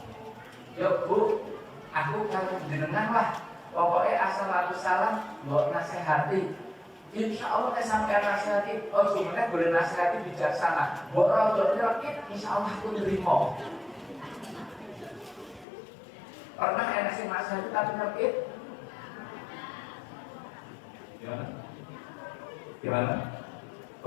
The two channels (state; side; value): drops out; right; at 15.7 s